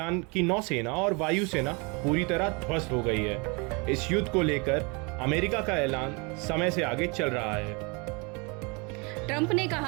की नौसेना और वायुसेना पूरी तरह ध्वस्त हो गई है। इस युद्ध को लेकर अमेरिका का ऐलान समय से आगे चल रहा है। ट्रंप ने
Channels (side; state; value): left; quieter; 29.9 dB